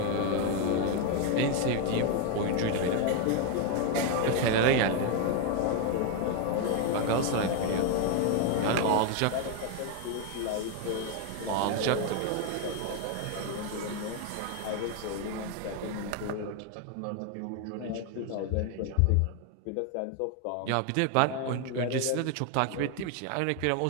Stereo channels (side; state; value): both; different; correlation 0.01